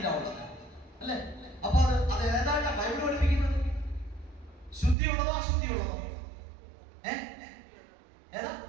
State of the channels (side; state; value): left; drops out; at 5.0 s